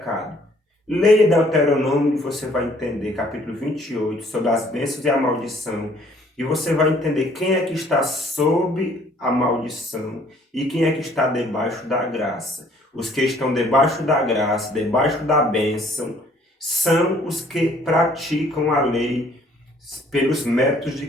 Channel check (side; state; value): both; normal; correlation 0.60